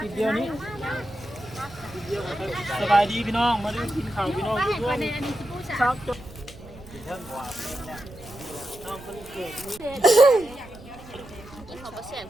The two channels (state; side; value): noise; right; rumble, 18 dB below the sound